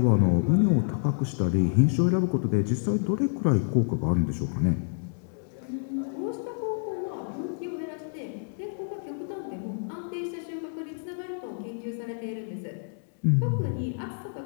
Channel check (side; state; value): right; silent; digital silence